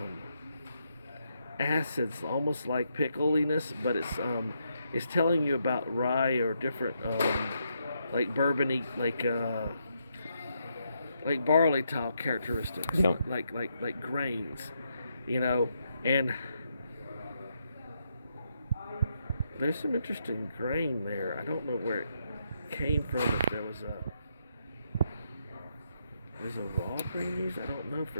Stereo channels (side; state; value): both; inverted; correlation -0.79